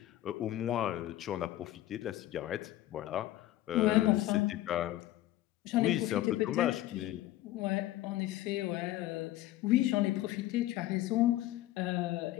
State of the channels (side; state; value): right; quieter; 14.8 dB